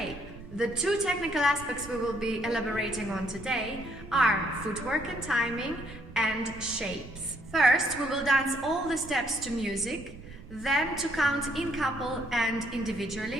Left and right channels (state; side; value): noise; right; rumble, 16 dB below the sound